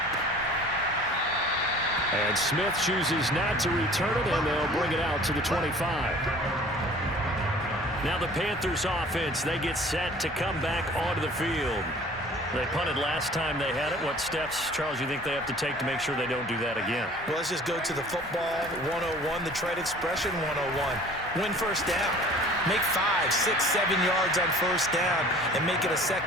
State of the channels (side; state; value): both; normal; correlation 0.48